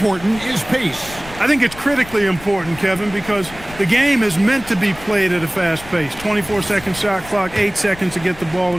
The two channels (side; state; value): left; noise; rumble, 17 dB below the sound